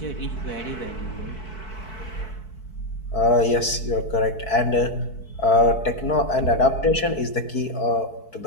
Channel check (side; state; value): right; late; 4.6 ms